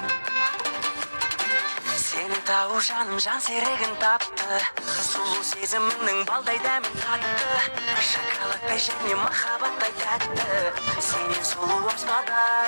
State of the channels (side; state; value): both; inverted; correlation -1.00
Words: Тау жаным жан серігін тапты, сұлу сезімінің балдай дәмін татты. Шоколадтай және махаббаттай тәтті, сенен сұлу